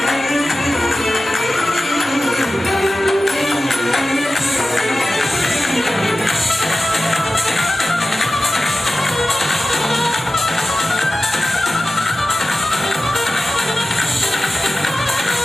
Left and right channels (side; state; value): both; normal; correlation 0.95